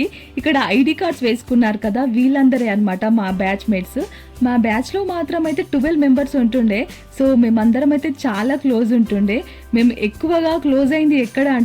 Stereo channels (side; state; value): both; identical; correlation 1.00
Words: ఇక్కడ ఐడి కార్డ్స్ వేసుకున్నారు కదా, వీళ్ళందరే అన్నమాట మా బ్యాచ్ మేట్స్. మా బ్యాచ్లో మాత్రం అయితే 12 members ఉంటుండే. సో మేమందరం అయితే చాలా క్లోజ్ ఉంటుండే. మేము ఎక్కువగా క్లోజ్ అయింది ఎక్కడ